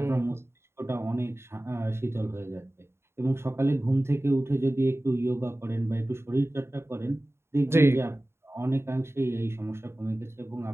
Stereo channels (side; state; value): left; late; 0.12 ms